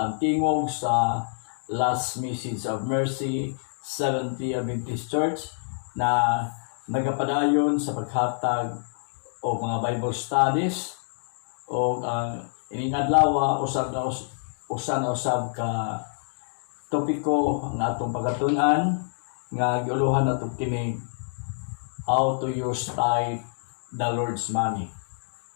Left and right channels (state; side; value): silent; right; digital silence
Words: tingog sa Last Message of Mercy Seventh-day Adventist Church na nagapadayon sa paghatag o mga Bible studies o ining adlaw usab ka topiko ang atong pagatunan nga giuluhan nato kini how to use tithe the Lord's money.